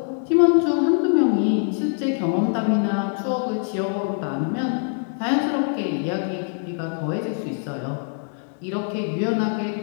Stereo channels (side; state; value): right; silent; 63 dB below the other